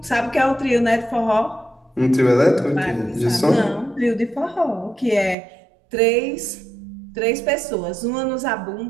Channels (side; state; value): left; drops out; at 5.4 s